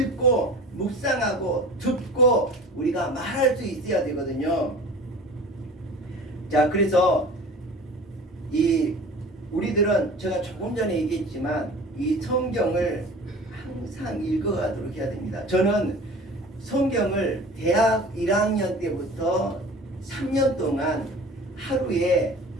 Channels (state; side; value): normal; both; correlation 0.41